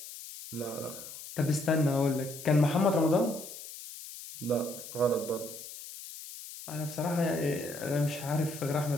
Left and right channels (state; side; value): noise; left; hiss, 13 dB below the sound